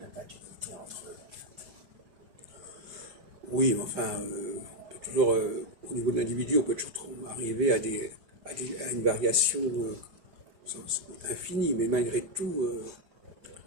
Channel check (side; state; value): left; late; 4.9 ms